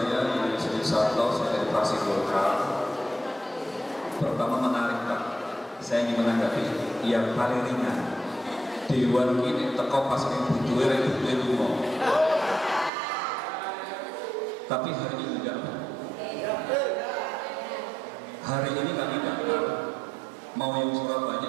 Yusri Sarto, saya dari fraksi Golkar. Pertama menarik Pak, saya ingin menanggapi yang paling ringan. Dewan ini teko pas butuhe lunga. Tapi hari ini enggak. Hari ini kami datang, mau yang Surabaya,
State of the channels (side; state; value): left; drops out; at 12.9 s